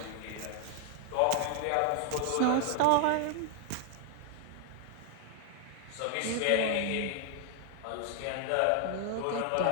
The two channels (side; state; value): both; different; correlation 0.00